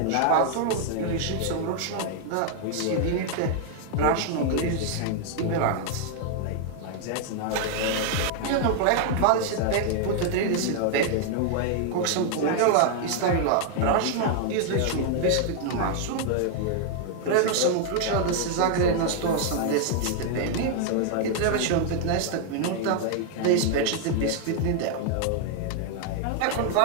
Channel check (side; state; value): both; different; correlation 0.00